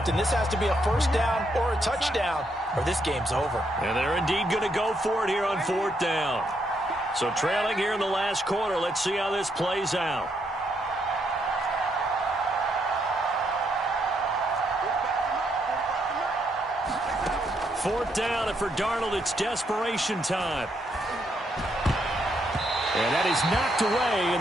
and this has to be a 1st down or a touchdown, or this game's over. And they're indeed going to go for it here on 4th down. So trailing here in the last quarter, let's see how this plays out. Fourth down, and for Darnold, it's desperation time. And that is knocked away in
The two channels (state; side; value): normal; both; correlation 0.76